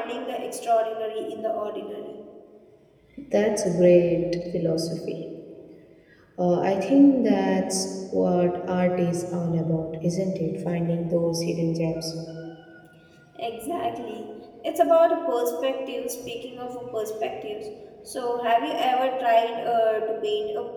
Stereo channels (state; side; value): identical; both; correlation 1.00